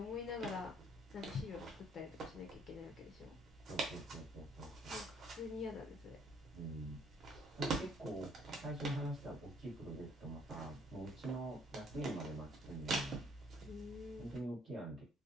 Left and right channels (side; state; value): both; normal; correlation 0.63